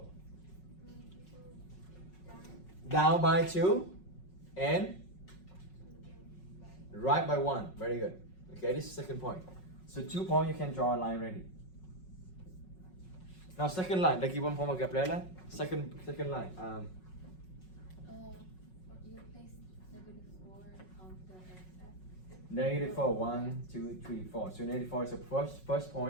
Down by 2 and right by 1. Very good. Okay, this is second point. So 2 points, you can draw a line ready. Now second line, lagi 1 point Gabriela. Second line. You place -4 on the x-axis. Negative 4. 1, 2, 3, 4. So negative 4 is the first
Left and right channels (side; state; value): right; late; 5.4 ms